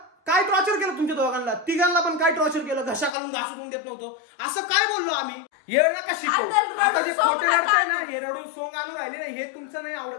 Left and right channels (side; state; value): right; drops out; at 3.1 s